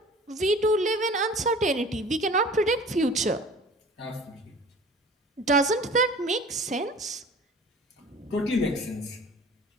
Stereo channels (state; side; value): normal; both; correlation 0.44